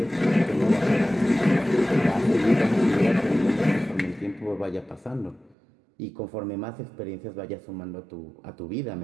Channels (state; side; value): drops out; left; at 5.6 s